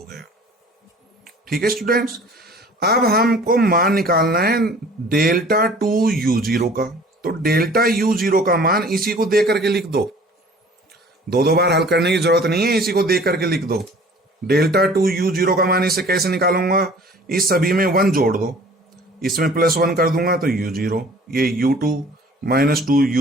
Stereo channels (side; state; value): both; normal; correlation 0.49